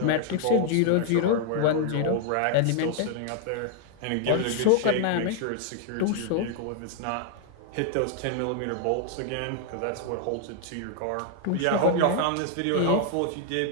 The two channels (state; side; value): different; both; correlation 0.00